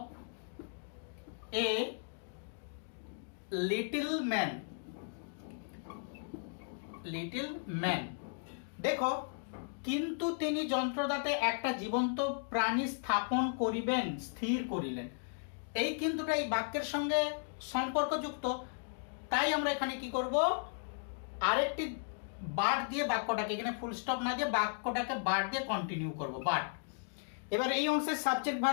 a little man. Little man. দেখো, কিন্তু তিনি যন্ত্রদাতে একটা জীবন্ত প্রাণী স্থাপন করিবেন, স্থির করিলেন। এই কিন্তুটা এই বাক্যের সঙ্গে সম্পর্কযুক্ত, তাই আমরা এখানে কি করব? আরেকটি বাট দিয়ে বাক্যটাকে, এখানে ফুল স্টপ না দিয়ে বাক্যটাকে বাট দিয়ে কন্টিনিউ করব, বাট। এবার এই অংশের সাবজেক্ট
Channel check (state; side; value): silent; right; digital silence